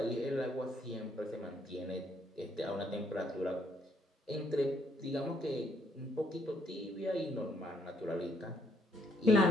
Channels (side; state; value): both; normal; correlation 0.69